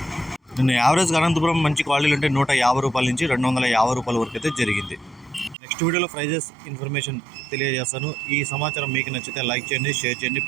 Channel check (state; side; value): drops out; left; at 5.6 s